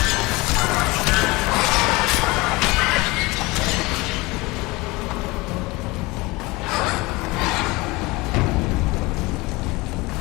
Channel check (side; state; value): right; quieter; 23.0 dB